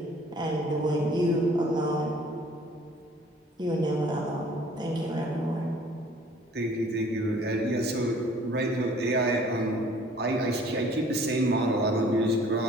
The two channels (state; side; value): normal; both; correlation 0.54